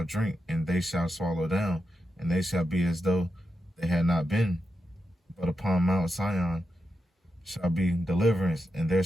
drink, and they shall swallow down, and they shall be as though they had not been. But upon Mount Sion shall be deliverance, and there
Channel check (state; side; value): normal; both; correlation 0.87